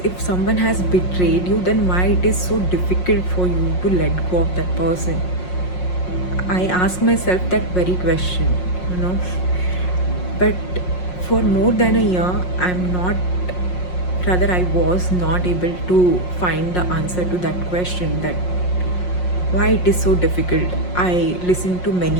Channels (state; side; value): late; right; 5.5 ms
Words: if someone has betrayed you, then why it is so difficult for you to let go of that person? I ask myself that very question, you know. But for more than a year, I was not able to find the answer to that question, that why it is so difficult. I listen to